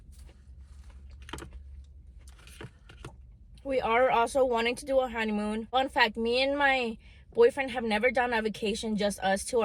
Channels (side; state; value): both; identical; correlation 1.00